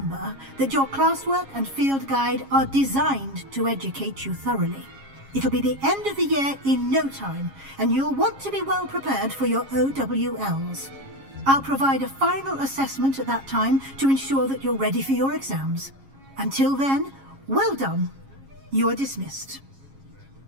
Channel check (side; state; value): left; late; 7.3 ms